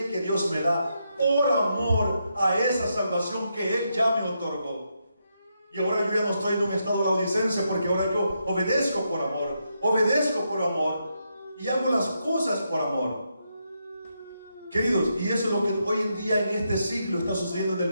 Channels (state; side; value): inverted; both; correlation -0.82